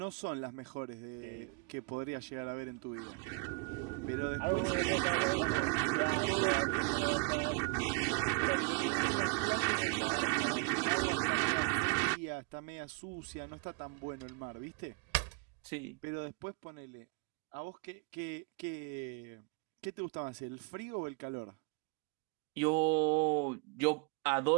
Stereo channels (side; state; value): left; quieter; 30.3 dB